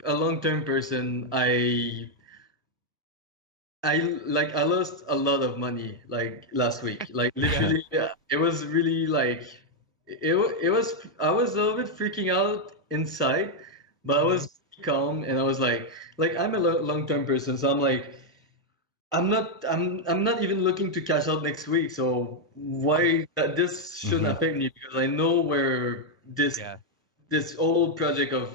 a long-term person. I lost a lot of money like last week. Like literally, it was really like it was. I was a little bit freaking out inside, but I was calm, and I was like I'm a long-term person, so I'm like. I'm not even looking to cash out next week, so why this shouldn't affect me, because I know where this old project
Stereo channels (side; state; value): both; normal; correlation 0.00